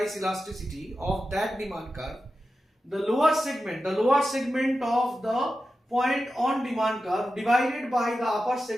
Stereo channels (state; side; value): normal; both; correlation 0.92